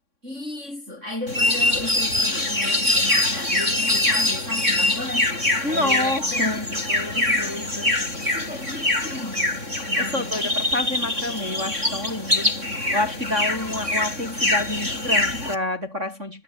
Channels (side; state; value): left; late; 3.6 ms